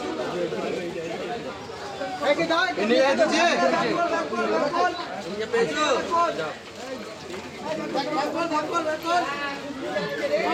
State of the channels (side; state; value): both; identical; correlation 1.00